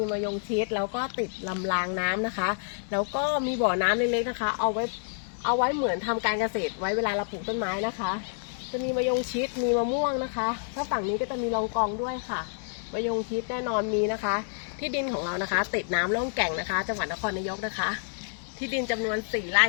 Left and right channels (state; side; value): silent; right; digital silence